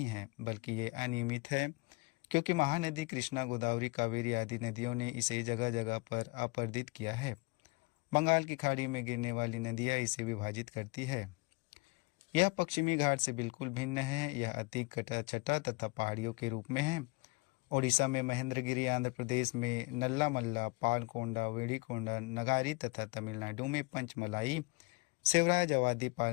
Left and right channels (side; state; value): right; quieter; 25.9 dB